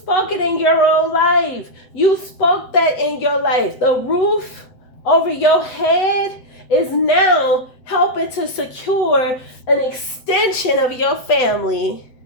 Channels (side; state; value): right; late; 7.8 ms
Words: it in your own life. You spoke that in your life. The roof over your head is now helping to secure an extension of your family.